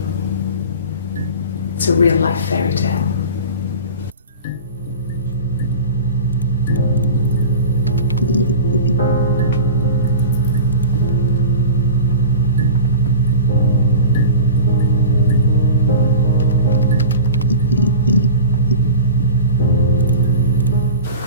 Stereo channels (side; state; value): both; inverted; correlation -0.34